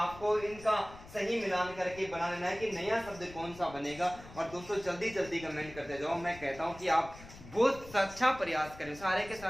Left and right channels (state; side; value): noise; left; rumble, 17 dB below the sound